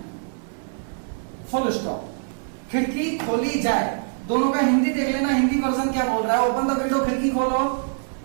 full stop, खिड़की खोली जाए। दोनों का हिंदी देख लेना, हिंदी वर्जन क्या बोल रहा है। ओपन द विंडो, खिड़की खोलो,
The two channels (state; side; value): silent; left; 58 dB below the other